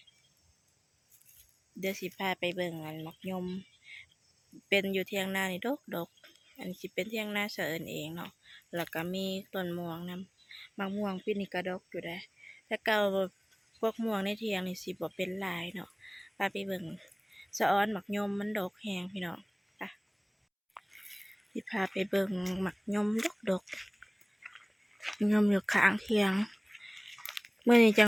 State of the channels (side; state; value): both; identical; correlation 1.00